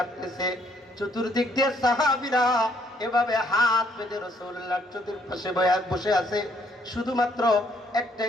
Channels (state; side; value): normal; both; correlation 0.67